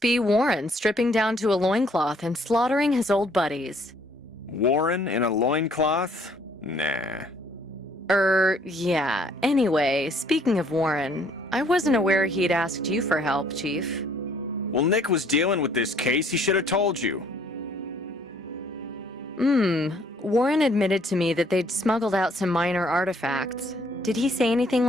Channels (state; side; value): normal; both; correlation 0.62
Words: be Warren stripping down to a loincloth and slaughtering his old buddies. Warren in a loincloth? Nah. Yeah. Anyway, speaking of Warren, I wasn't aware he'd asked you for help, Chief. Well, Nick was dealing with this case. He should have told you. Warren admitted to me that they'd smuggled out some minor artifacts. Did he say anything